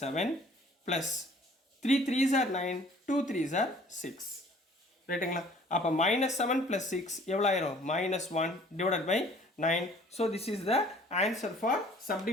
plus 3 3s are 9, 2 3s are 6. ரைட்டுங்களா? அப்போ -7 + 6 எவ்வளோ ஆயிரும்? -1 divided by 9. So this is the answer for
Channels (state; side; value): normal; both; correlation 0.54